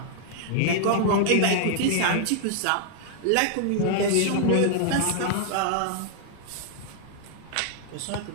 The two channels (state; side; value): different; both; correlation -0.01